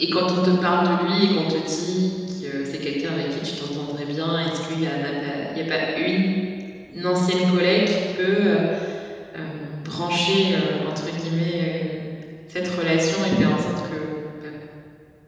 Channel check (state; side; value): identical; both; correlation 1.00